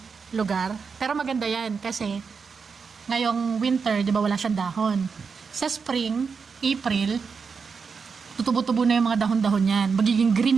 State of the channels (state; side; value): quieter; left; 5.5 dB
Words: lugar. Pero maganda yan kasi ngayong winter, di ba wala siyang dahon. Sa spring, April, tutubo-tubo na yung mga dahon-dahon yan. Magiging